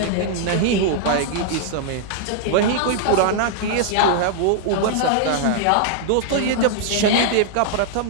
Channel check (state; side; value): different; both; correlation -0.01